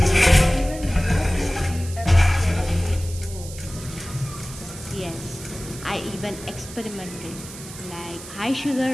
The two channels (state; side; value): noise; right; hiss, 14 dB below the sound